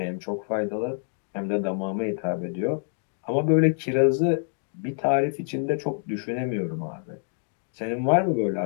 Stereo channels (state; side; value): silent; right; digital silence